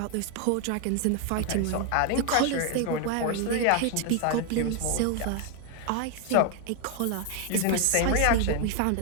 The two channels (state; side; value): different; both; correlation 0.00